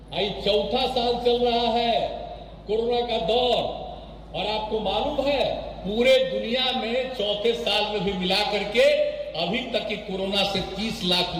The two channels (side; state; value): both; identical; correlation 1.00